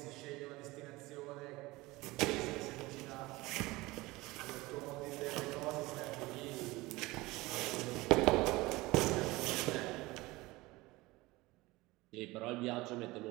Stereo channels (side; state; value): left; quieter; 20.9 dB